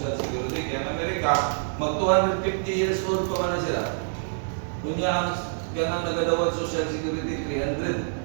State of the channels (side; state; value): left; silent; digital silence